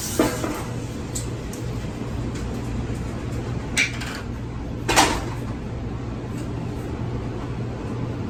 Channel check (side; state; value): both; identical; correlation 1.00